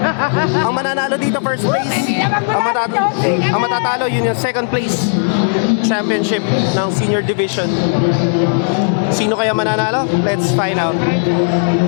Ang mananalo dito first place, ang matatalo yun yung second place championship ng senior division. Sino kaya mananalo? Let's find out.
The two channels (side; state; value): right; silent; digital silence